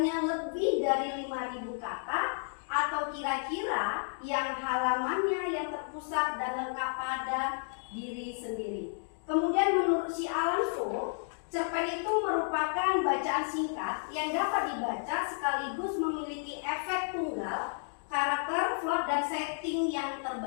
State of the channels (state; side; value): silent; right; digital silence